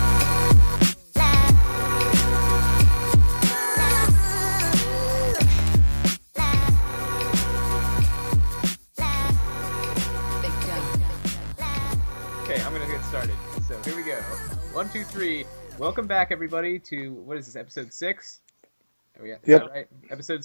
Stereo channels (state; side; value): inverted; both; correlation -1.00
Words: I'm gonna get started. So here we go. 1, 2, 3. Welcome back, everybody, to what is this? Episode 6. Is that right? Episode